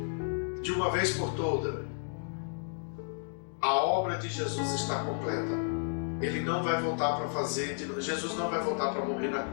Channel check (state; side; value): silent; right; digital silence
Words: De uma vez por todas, a obra de Jesus está completa. Ele não vai voltar para fazer, Jesus não vai voltar para morrer na